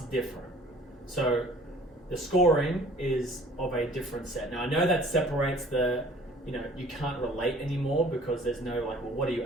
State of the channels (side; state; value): both; normal; correlation 0.51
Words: different. So the scoring is of a different set. Now I know that separates you can't relate anymore because there's no like, well, what do you